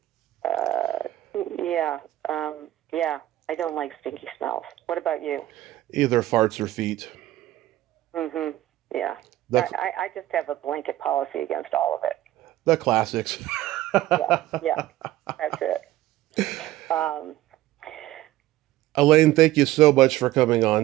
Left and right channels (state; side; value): quieter; left; 15.2 dB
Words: Uh, yeah. Yeah. I don't like stinky smells. What about you? Either farts or feet. Mhm. Yeah. The I just have a blanket policy against all of it. the classics. Yeah. Yeah. That's it. Um, Elaine, thank you so much for coming